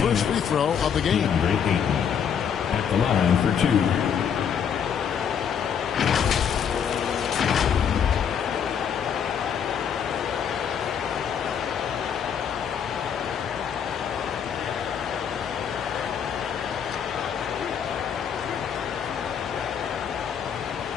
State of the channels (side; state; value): right; quieter; 7.8 dB